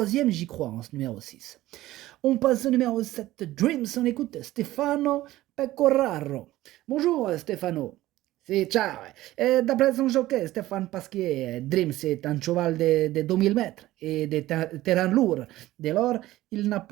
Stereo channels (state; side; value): quieter; left; 16.1 dB